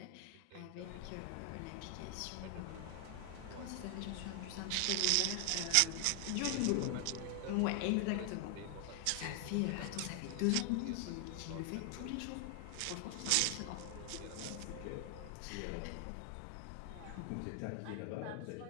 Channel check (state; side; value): different; both; correlation 0.00